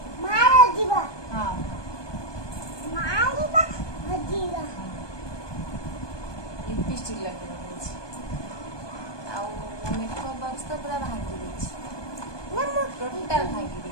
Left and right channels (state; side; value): late; right; 1.2 ms